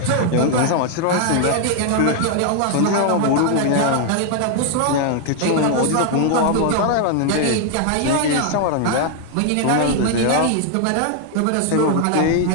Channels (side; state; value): both; different; correlation 0.00